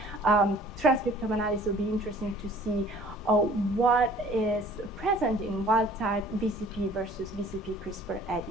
Transcriptome analysis will be interesting to see what is present in wild-type VCP versus VCP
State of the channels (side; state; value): both; normal; correlation 0.52